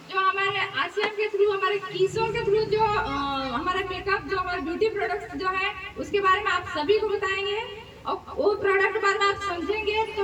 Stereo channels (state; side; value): identical; both; correlation 1.00